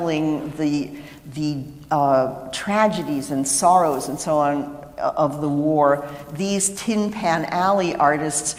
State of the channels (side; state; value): both; identical; correlation 1.00